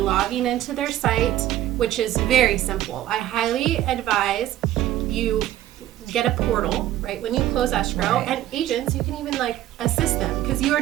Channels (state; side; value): quieter; left; 13.5 dB